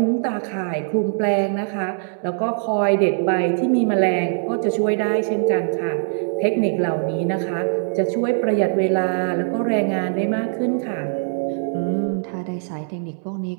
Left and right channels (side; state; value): left; silent; 64 dB below the other